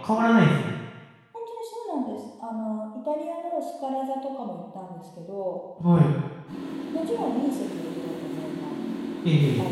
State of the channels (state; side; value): identical; both; correlation 1.00